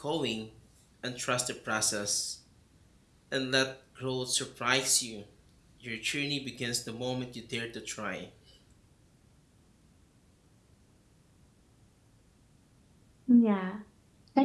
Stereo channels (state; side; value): identical; both; correlation 1.00